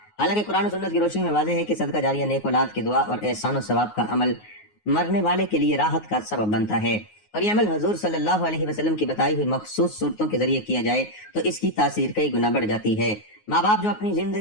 حالانکہ قرآن و سنت کی روشنی میں واضح ہے کہ صدقہ جاریہ، نیک اولاد کی دعا اور احسان و ثواب کا عمل مرنے والے کے لیے راحت کا سبب بنتا ہے، اور یہ عمل حضور صلی اللہ علیہ وسلم کی بتائی ہوئی مخصوص صورتوں کے ذریعے کیا جائے تو اس کی تاثیر کئی گنا بڑھ جاتی ہے۔ ماں باپ جو اپنی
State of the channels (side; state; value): right; late; 9.5 ms